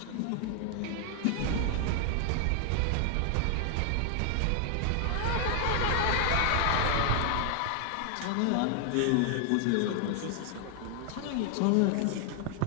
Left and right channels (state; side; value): different; both; correlation 0.00